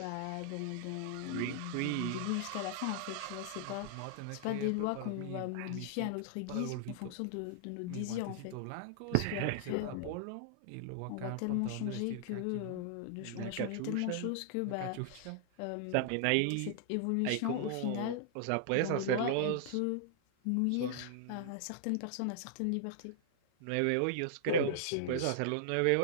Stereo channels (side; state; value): both; different; correlation -0.01